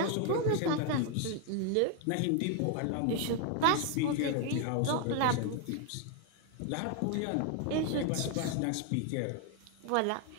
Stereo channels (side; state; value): both; different; correlation 0.01